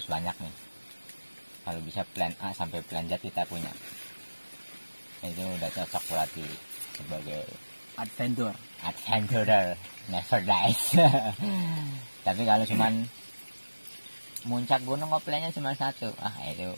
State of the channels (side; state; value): both; inverted; correlation -1.00